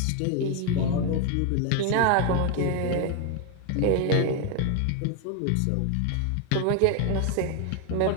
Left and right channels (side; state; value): both; different; correlation 0.01